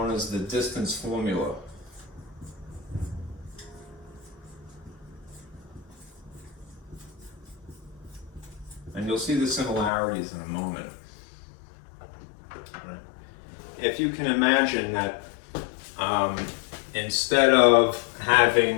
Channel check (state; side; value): drops out; right; at 9.9 s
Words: as the distance formula. And you'll see the similarities in a moment. Right. If you can imagine that instead of